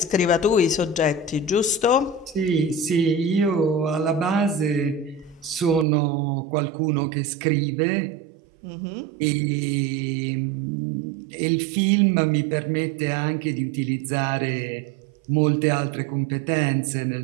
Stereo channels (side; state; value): left; drops out; at 5.9 s